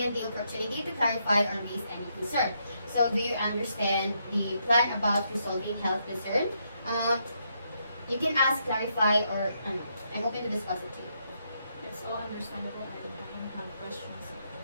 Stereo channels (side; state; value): both; inverted; correlation -0.78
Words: the opportunity to clarify or raise any concern. So do you understand the plan about resolving health concern? You can ask, clarify, or I'm open to discuss it too. It's all understandable. I don't have questions.